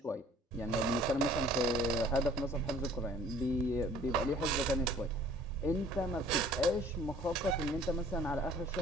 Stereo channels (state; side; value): normal; both; correlation 0.53